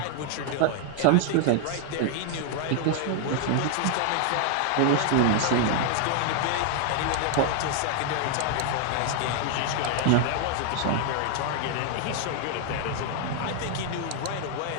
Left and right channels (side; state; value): both; different; correlation 0.00